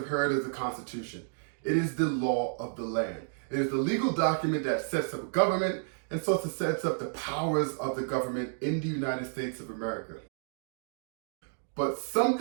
heard of the Constitution. It is the law of the land. It is the legal document that sets up a government and so it sets up the powers of the government in the United States of America. But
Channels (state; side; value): silent; left; digital silence